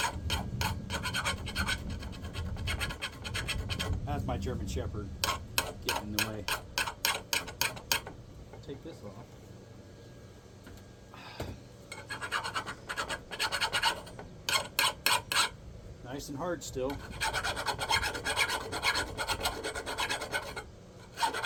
That's my German Shepherd getting in the way. Take this off. Nice and hard still.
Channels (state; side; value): identical; both; correlation 1.00